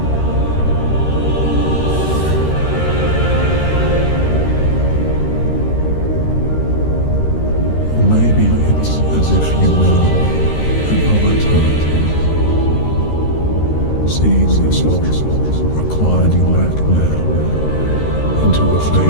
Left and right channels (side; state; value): right; late; 13 ms